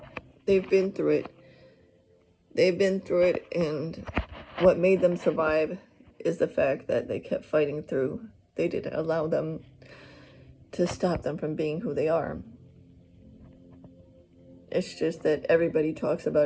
They've been through it. And what made them survive is the fact that they kept fighting through. They didn't allow them to stop them from being who they are. It's just that everybody talks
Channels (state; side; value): identical; both; correlation 1.00